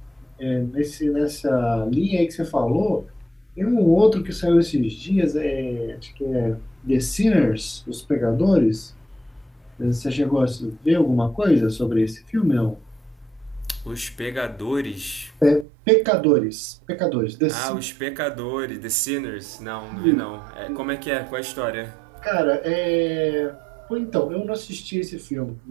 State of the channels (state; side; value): drops out; left; at 15.7 s